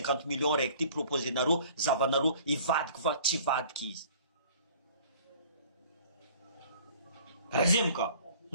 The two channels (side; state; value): both; inverted; correlation -0.51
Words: millions recti proposer naro zavanaro ivad kwa tivad kiz. Razimka.